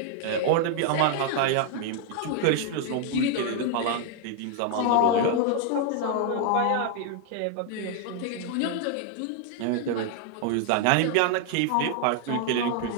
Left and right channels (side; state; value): both; different; correlation 0.00